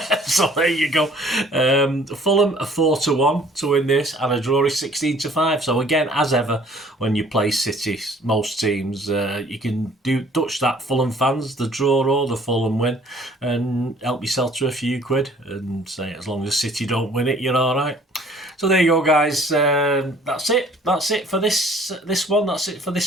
So there you go. Fulham a 4-1 to win this, and a draw is 16-5. So again, as ever, when you play City, most teams, you can touch that Fulham fans, the draw or the Fulham win, and help yourself to a few quid, and say as long as City don't win it, you're all right. So there you go, guys. That's it. That's it for this one. That's it for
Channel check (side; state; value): both; normal; correlation 0.55